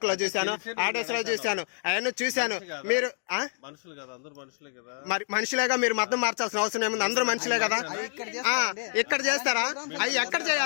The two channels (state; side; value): silent; right; digital silence